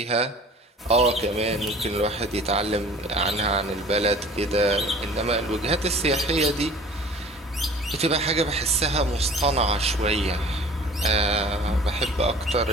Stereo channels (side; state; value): both; normal; correlation 0.46